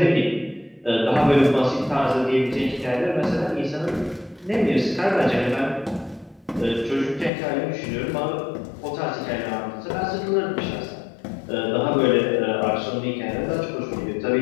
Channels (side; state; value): right; drops out; at 7.3 s